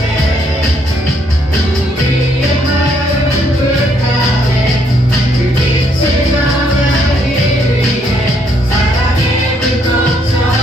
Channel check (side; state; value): both; normal; correlation 0.71